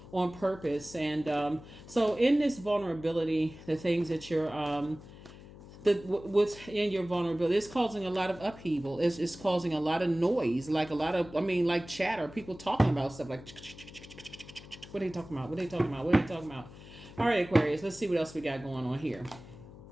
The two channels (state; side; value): noise; left; hum, 17 dB below the sound